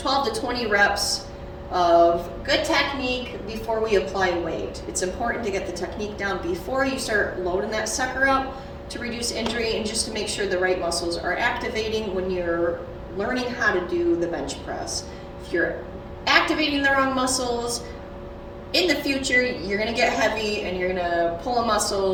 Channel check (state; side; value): identical; both; correlation 1.00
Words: to 20 reps of good technique before we apply weight. It's important to get the technique down before you start loading that sucker up to reduce injury and just to make sure the right muscles are activating when you're learning how to do the bench press. If you're activating the wrong muscles, in the future you're going to get heavy and you're going to pull a